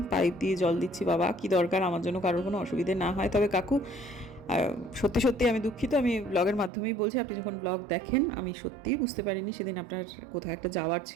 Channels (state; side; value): drops out; left; at 6.7 s